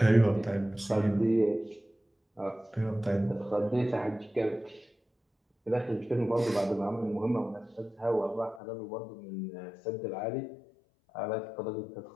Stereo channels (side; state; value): right; drops out; at 8.6 s